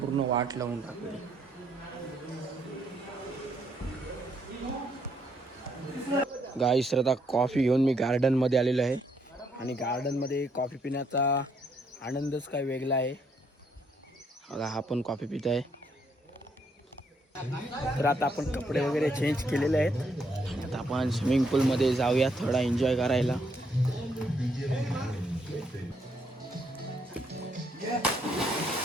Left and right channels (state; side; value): normal; both; correlation 0.73